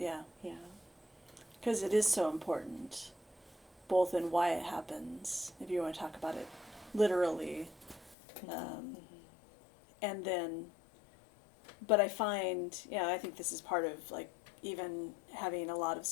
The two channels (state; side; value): drops out; right; at 8.2 s